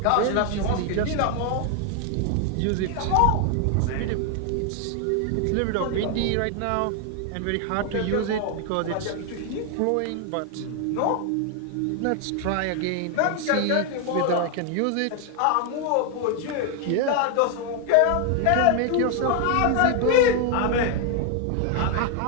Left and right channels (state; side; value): different; both; correlation 0.00